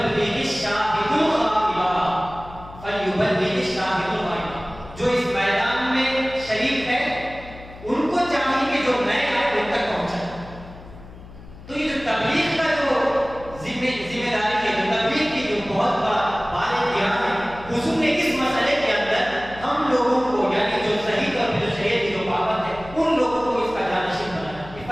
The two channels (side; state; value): left; noise; hum, 17 dB below the sound